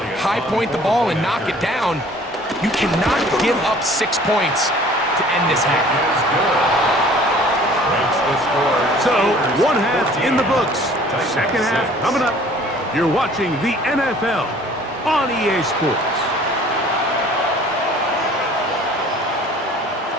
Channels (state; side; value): normal; both; correlation 0.51